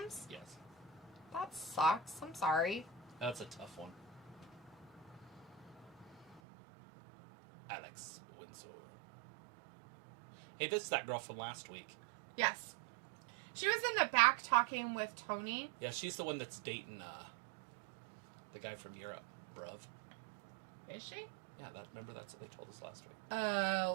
Yes. That sucks. I'm sorry. That's a tough one. Alex Winslow. Hey, this is that girl from last week. Yes. She was in the back talking with Tony. Yeah, she's the one that's dating the guy from Europe, bruv. Is she? Yeah, remember that's what they told us last week.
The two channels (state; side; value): drops out; left; at 6.4 s